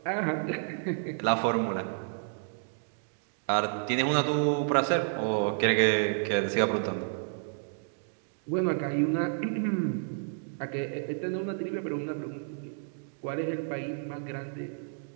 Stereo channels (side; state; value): left; silent; digital silence